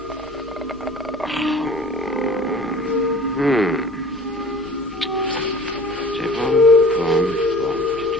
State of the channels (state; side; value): normal; both; correlation 0.44